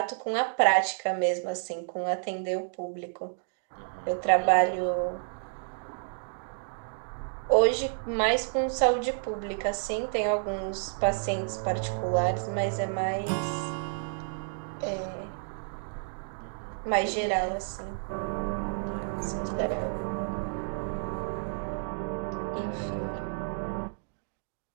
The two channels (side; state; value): left; silent; digital silence